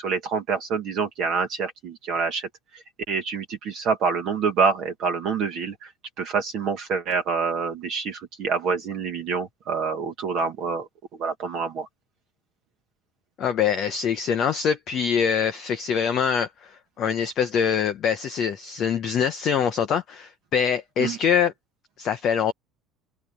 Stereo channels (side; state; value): both; normal; correlation 0.44